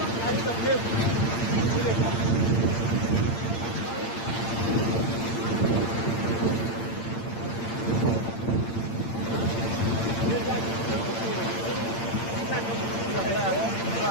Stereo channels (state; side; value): late; right; 8.8 ms